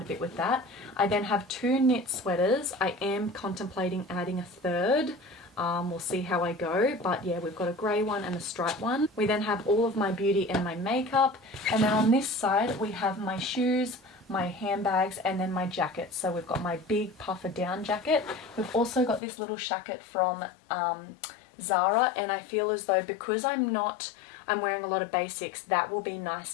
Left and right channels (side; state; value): right; drops out; at 19.2 s